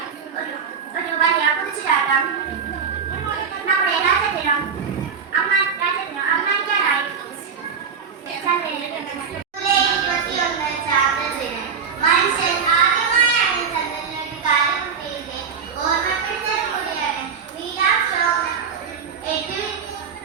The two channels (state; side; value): quieter; left; 6.5 dB